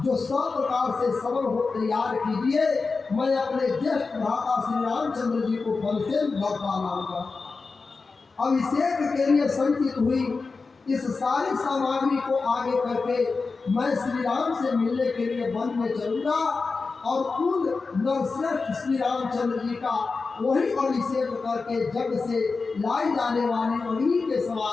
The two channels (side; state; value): right; quieter; 4.3 dB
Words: जो सब प्रकार से सबल हो तैयार कीजिए। मैं अपने ज्येष्ठ भ्राता श्री रामचंद्र जी को वन से लौटा लाऊंगा। अभिषेक के लिए संचित हुई इस सारी सामग्री को आगे करके मैं श्री राम से मिलने के लिए वन में चलूंगा और उन नरश्रेष्ठ श्री रामचंद्र जी का वही अभिषेक करके जग से लाई जाने वाली अग्नि के